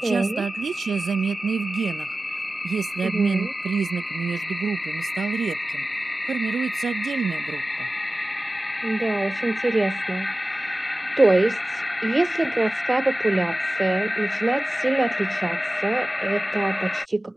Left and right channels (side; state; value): both; normal; correlation 0.96